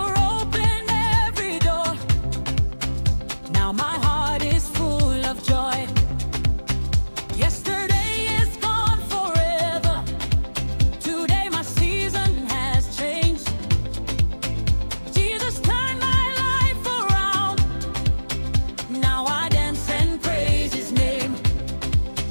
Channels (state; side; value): inverted; both; correlation -1.00